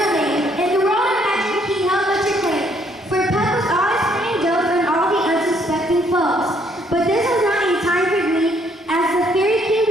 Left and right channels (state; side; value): normal; both; correlation 0.67